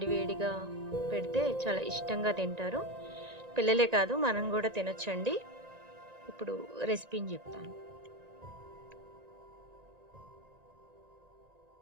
పెడితే చాలా ఇష్టంగా తింటారు. పిల్లలే కాదు, మనం కూడా తినొచ్చండి. ఇప్పుడు రెసిపీని చెప్తాను.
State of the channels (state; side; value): late; left; 1.9 ms